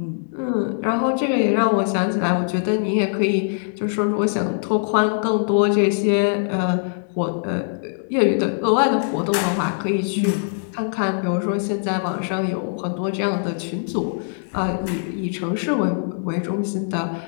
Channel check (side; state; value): right; silent; digital silence